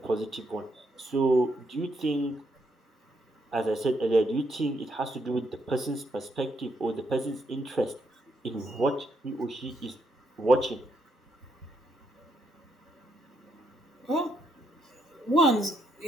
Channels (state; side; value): normal; both; correlation 0.76